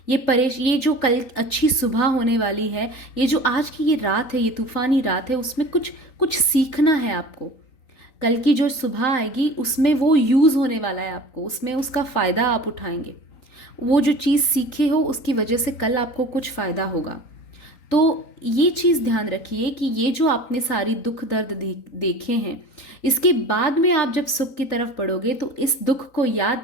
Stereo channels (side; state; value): right; late; 3.9 ms